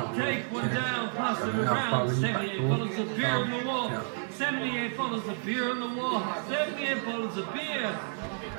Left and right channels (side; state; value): left; silent; digital silence